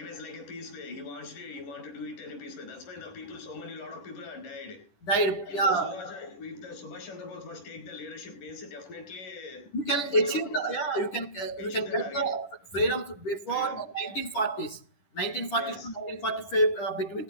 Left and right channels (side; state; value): right; late; 10 ms